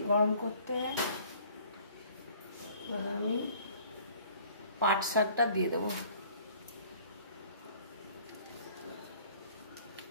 গরম করতে। এবার আমি পাট শাকটা দিয়ে দেবো।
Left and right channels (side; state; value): both; inverted; correlation -0.53